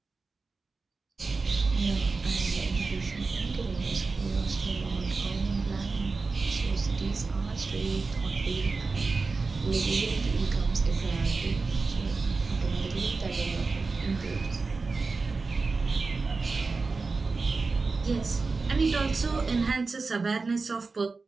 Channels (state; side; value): quieter; left; 4.1 dB